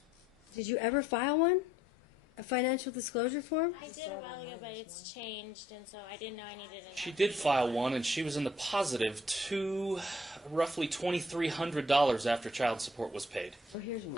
Did you ever file one? A financial disclosure form? I did a while ago, but it's changed, and so I didn't know I needed it. She did file one, and she was in the positive to roughly $2,300 after child support was paid. Oh, here's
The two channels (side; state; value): both; normal; correlation 0.64